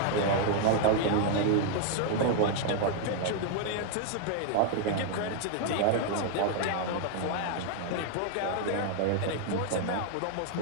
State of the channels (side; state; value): both; different; correlation 0.00